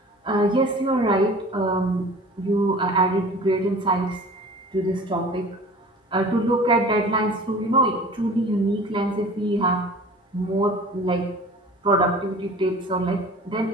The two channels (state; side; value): normal; both; correlation 0.43